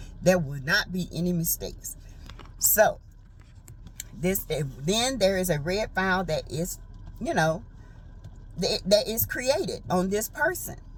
there will not be any mistakes. So then there is a red file that is, you know, that is created on this person.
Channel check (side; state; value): both; identical; correlation 1.00